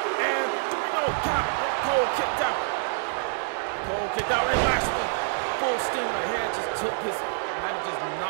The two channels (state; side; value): silent; left; digital silence